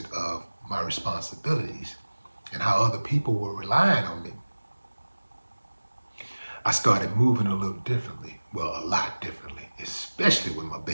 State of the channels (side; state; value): both; inverted; correlation -1.00